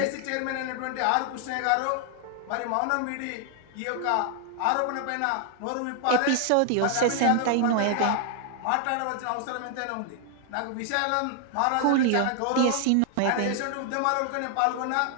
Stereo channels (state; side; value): different; both; correlation 0.00